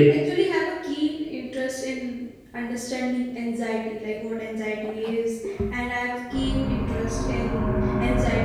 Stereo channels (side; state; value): both; identical; correlation 1.00